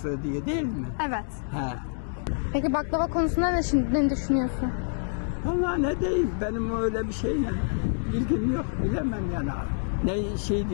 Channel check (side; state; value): right; silent; digital silence